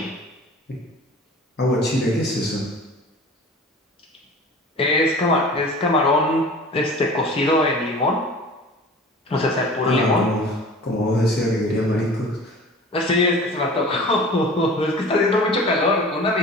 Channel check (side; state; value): both; normal; correlation 0.41